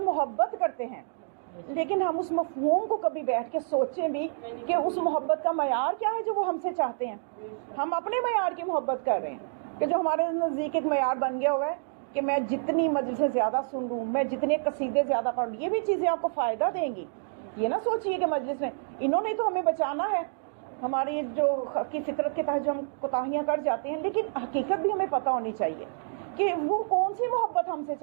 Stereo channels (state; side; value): silent; left; digital silence